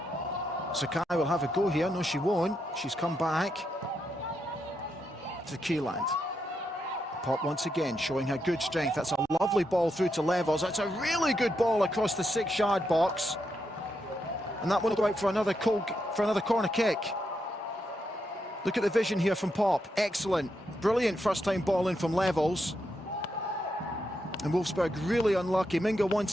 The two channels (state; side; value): normal; both; correlation 0.82